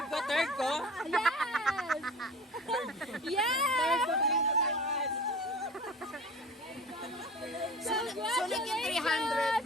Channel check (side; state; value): both; normal; correlation 0.38